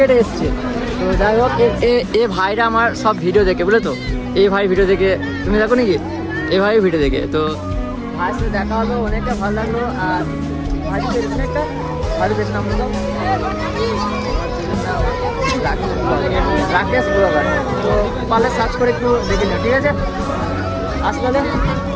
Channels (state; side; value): identical; both; correlation 1.00